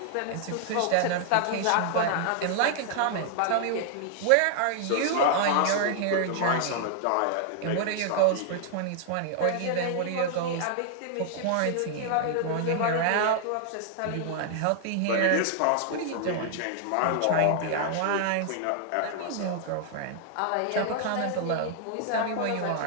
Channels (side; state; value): both; different; correlation 0.00